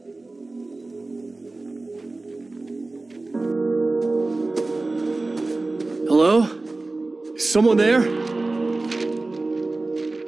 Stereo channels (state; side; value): quieter; left; 3.2 dB